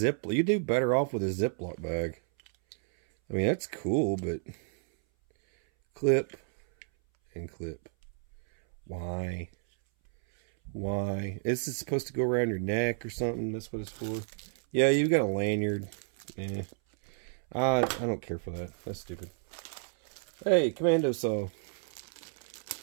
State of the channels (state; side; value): silent; left; 57 dB below the other